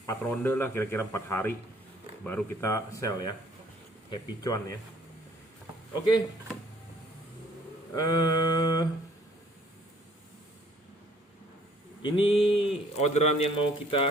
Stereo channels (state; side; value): normal; both; correlation 0.59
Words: ronde lah, kira-kira 4 hari baru kita sell ya. Happy cuan ya. Oke. Ini orderan yang mau